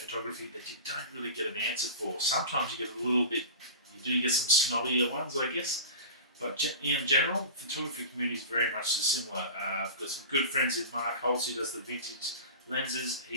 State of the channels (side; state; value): both; inverted; correlation -0.32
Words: that you don't really get an answer for. Sometimes you get a little bit, you do get some snobbier ones, I guess. But in general, photography community is very much similar. I've got some good friends in Mark Holtz, who does the vintage lenses.